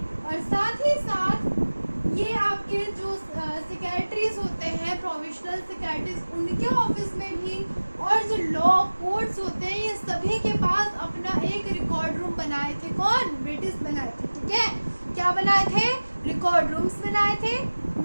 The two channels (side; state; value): both; inverted; correlation -1.00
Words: और साथ ही साथ ये आपके जो सेक्रेटरीज होते हैं, प्रोविजनल सेक्रेटरीज, उनके ऑफिस में भी, और जो लॉ कोर्ट्स होते हैं, ये सभी के पास अपना एक रिकॉर्ड रूम बनाए थे। कौन? ब्रिटिश बनाए थे। ठीक है, क्या बनाए थे? रिकॉर्ड रूम्स बनाए थे,